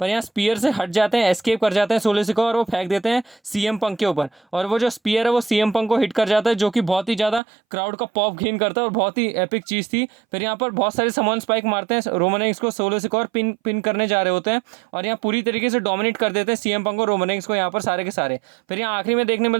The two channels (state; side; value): drops out; left; at 7.4 s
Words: यहाँ स्पीयर से हट जाते हैं, एस्केप कर जाते हैं सोलो सिकाओ और वो फेंक देते हैं सीएम पंक के ऊपर और वो जो स्पीयर है वो सीएम पंक को हिट कर जाता है, जो कि बहुत ही ज़्यादा क्राउड का पॉप गेन करता है और बहुत ही एपिक चीज़ थी। फिर यहाँ पर बहुत सारे समॉन स्पाइक मारते हैं रोमन रेंस को, सोलो सिकाओ और पिन करने जा रहे होते हैं और यहाँ पूरी तरीके से डोमिनेट कर देते हैं सीएम पंक और रोमन रेंस को यहाँ पर सारे के सारे। फिर यहाँ आखिरी में देखने